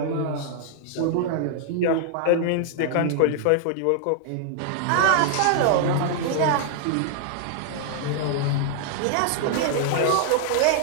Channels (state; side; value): different; both; correlation -0.01